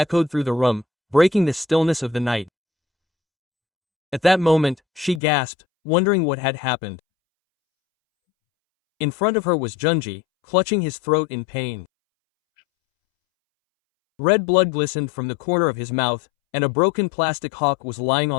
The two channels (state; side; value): drops out; right; at 5.2 s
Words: through the room, breaking the stillness of the night. At that moment, she gasped, wondering what had happened. In front of her was Junji, clutching his throat in pain. Red blood glistened from the corner of his mouth, and a broken plastic hawk was lying